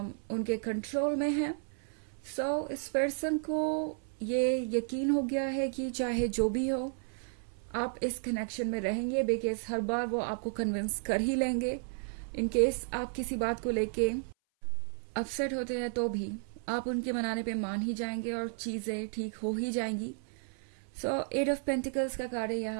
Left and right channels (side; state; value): left; silent; 56 dB below the other